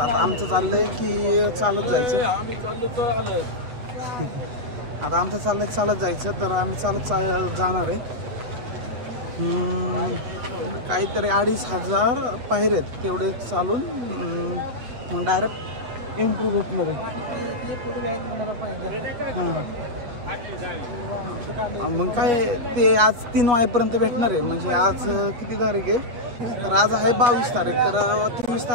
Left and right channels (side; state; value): left; late; 8.2 ms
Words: आमचं चाललंय की चालत जायचं. आम्ही चाललो तर आलं आता आमचं चाललंय चालत जायचं, तर आम्ही चालत जाणार आहे. काहीतरी 2500 पायऱ्या आहेत, तेवढे चालून मग डायरेक्ट इम्प्रूव्ह भेटणार आहे. हां मग काय ते आज 3 वाजेपर्यंत भेटणार आहे. म्हणजे आज किती तारीख आहे, तर आज आहे 22 तारीख. तर 23